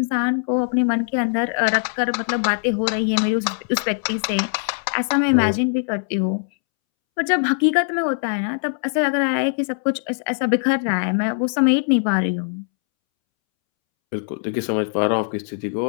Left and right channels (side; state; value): right; silent; 65 dB below the other